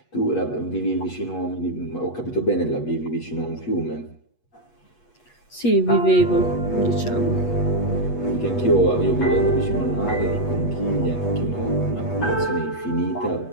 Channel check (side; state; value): right; late; 8.3 ms